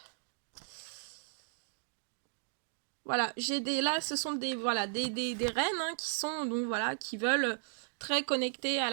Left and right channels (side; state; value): left; silent; digital silence